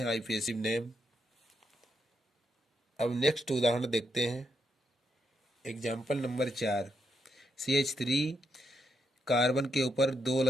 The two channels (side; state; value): both; normal; correlation 0.80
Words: आईपीएसिव नेम। अब नेक्स्ट उदाहरण देखते हैं। Example number 4। CH3 कार्बन के ऊपर 2